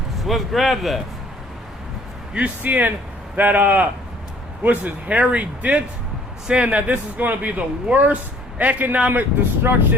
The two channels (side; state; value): both; normal; correlation 0.56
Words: So let's grab that. You seeing that, what's his, Harry Dent, saying that this is going to be the worst economic